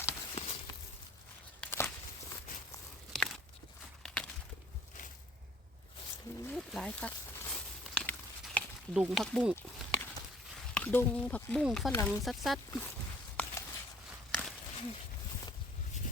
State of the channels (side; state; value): both; normal; correlation 0.56